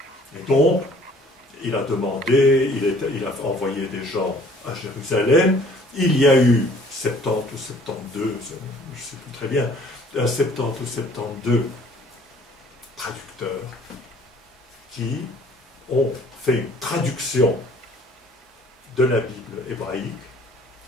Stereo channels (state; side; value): normal; both; correlation 0.55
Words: Et donc, il a demandé, il a envoyé des gens à Jérusalem. Il y a eu 70 ou 72, je ne sais plus très bien, 70 ou 72 traducteurs qui ont fait une traduction de la Bible hébraïque,